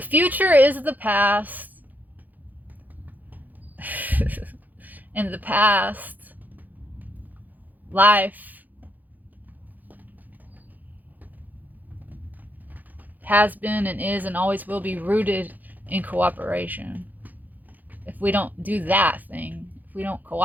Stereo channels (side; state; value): left; late; 0.083 ms